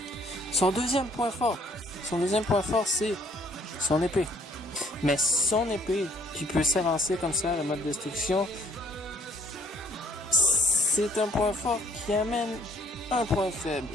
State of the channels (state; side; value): normal; both; correlation 0.62